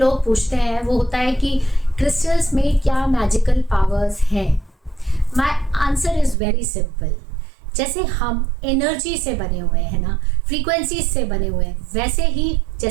पूछते हैं वो होता है कि क्रिस्टल्स में क्या मैजिकल पावर्स हैं। My answer is very simple. जैसे हम एनर्जी से बने हुए हैं ना, फ्रीक्वेंसीज से बने हुए हैं, वैसे ही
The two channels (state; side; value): drops out; left; at 6.4 s